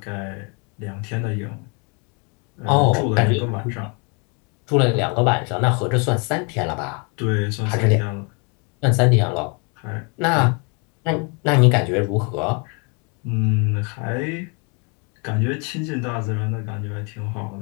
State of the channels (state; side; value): quieter; right; 34.2 dB